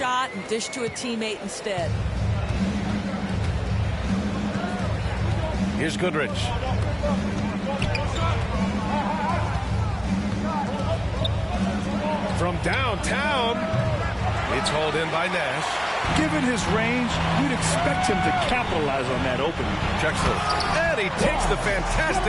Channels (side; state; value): both; identical; correlation 1.00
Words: and dish to a teammate instead. Here's Goodrich. From downtown, it's hauled in by Nash. Given his range, you'd expect him to capitalize on that opening. Drexler. And he takes the